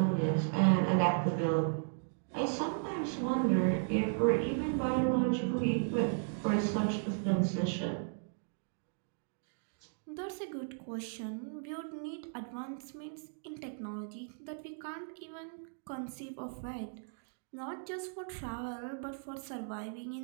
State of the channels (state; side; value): silent; left; digital silence